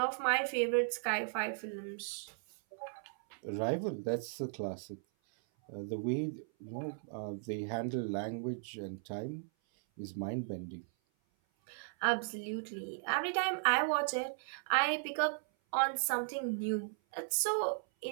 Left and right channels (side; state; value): left; silent; 53 dB below the other